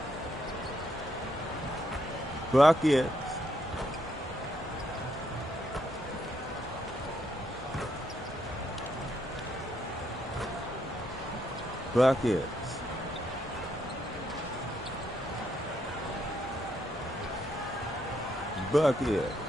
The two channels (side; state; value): both; normal; correlation 0.76